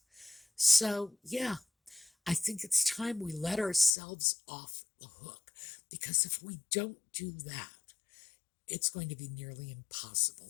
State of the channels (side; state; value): right; drops out; at 4.0 s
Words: So, yeah, I think it's time we let ourselves off the hook, because if we don't do that, it's going to be nearly impossible